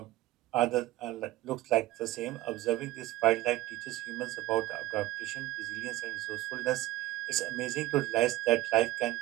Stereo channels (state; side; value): quieter; left; 16.3 dB